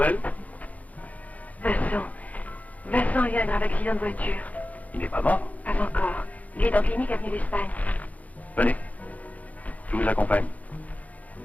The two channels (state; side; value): late; right; 0.073 ms